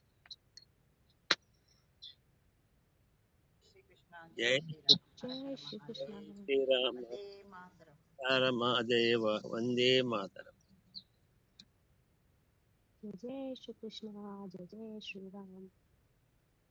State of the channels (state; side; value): identical; both; correlation 1.00